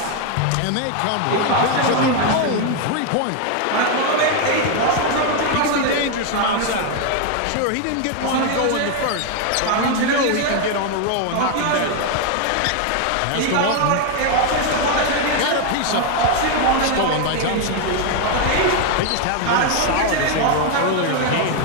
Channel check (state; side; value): different; both; correlation 0.01